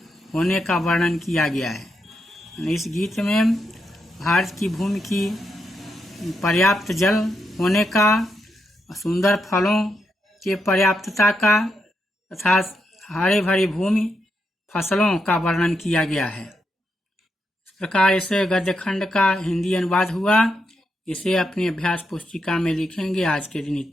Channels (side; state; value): both; normal; correlation 0.83